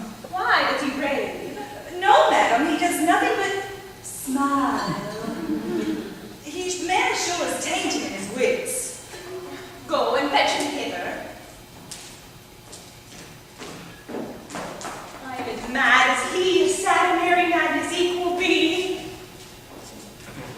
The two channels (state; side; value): identical; both; correlation 1.00